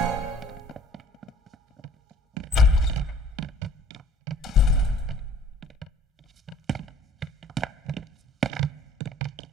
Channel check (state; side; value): normal; both; correlation 0.52